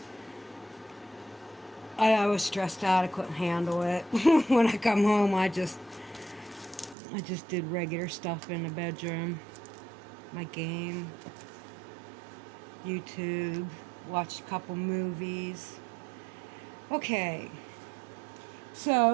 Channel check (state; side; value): drops out; left; at 7.0 s